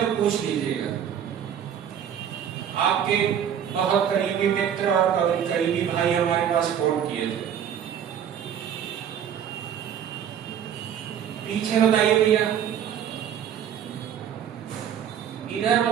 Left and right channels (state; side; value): quieter; left; 9.0 dB